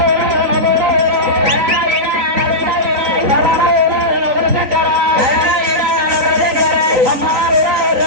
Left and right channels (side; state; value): left; late; 3.9 ms